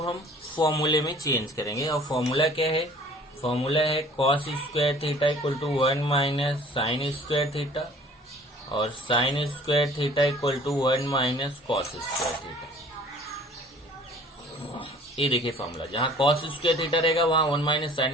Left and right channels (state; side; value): normal; both; correlation 0.50